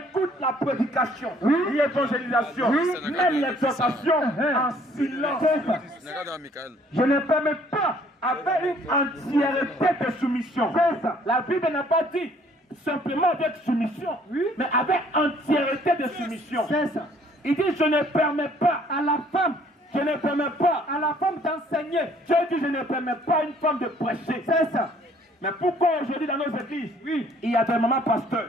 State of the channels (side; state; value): both; normal; correlation 0.60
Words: la prédication, l'évangélisation, même l'exhortation en silence. Je ne permets pas avec une entièreté de soumission. La Bible n'a pas dit simplement avec soumission, mais avec entièreté de soumission. Il dit je ne permets pas à la femme. Je ne permets pas à la femme d'enseigner. Dieu dit je ne permets pas à une femme de prêcher. C'est ça. Mais pourquoi aujourd'hui dans nos églises, Oui. il y a des mamans